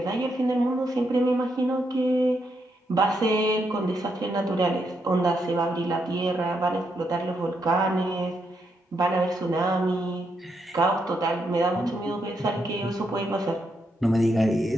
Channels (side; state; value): both; normal; correlation 0.80